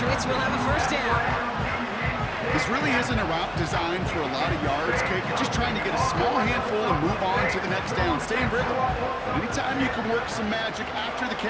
will have a 1st down. This really isn't a route designed for a lot of yards, Kate. You're just trying to get a small handful and move on to the next down. Stay in rhythm. But anytime you can work some magic after the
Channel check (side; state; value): both; identical; correlation 1.00